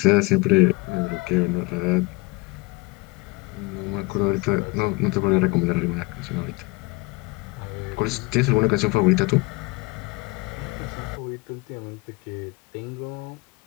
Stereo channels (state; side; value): quieter; right; 25.1 dB